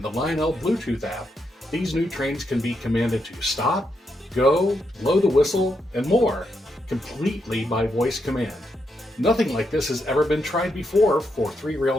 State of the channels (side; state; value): both; normal; correlation 0.82